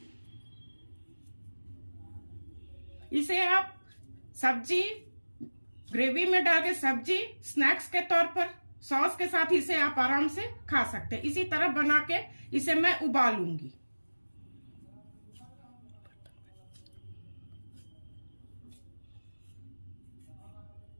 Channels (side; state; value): both; inverted; correlation -1.00